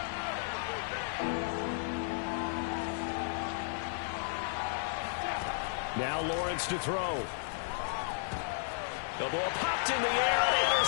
Now Lawrence to throw. The ball popped in the air and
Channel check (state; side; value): silent; right; digital silence